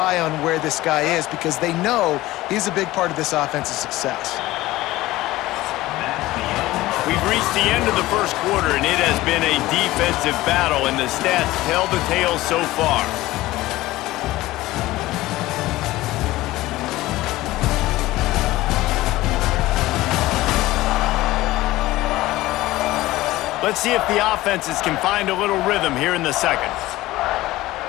on where this guy is because they know he's a big part of this offense's success. We've reached the end of the first quarter, and it has been a defensive battle, and the stats tell the tale so far. Let's see if the offenses can find a little rhythm here in the second.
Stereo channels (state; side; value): quieter; right; 17.6 dB